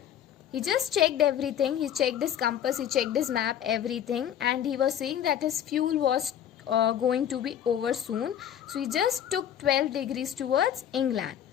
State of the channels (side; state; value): right; quieter; 10.0 dB